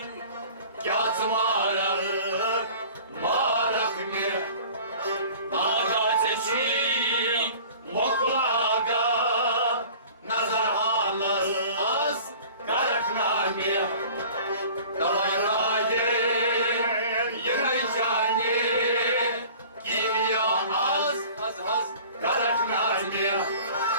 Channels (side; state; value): both; inverted; correlation -0.45